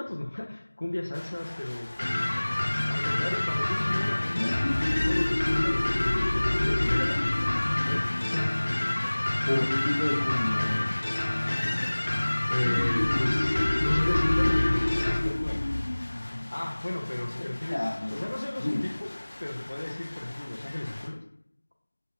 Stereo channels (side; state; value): both; inverted; correlation -1.00